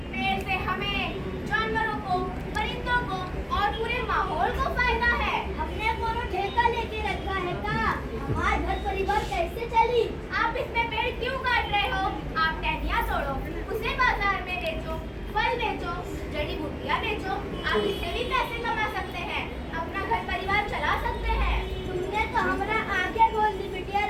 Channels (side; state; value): both; identical; correlation 1.00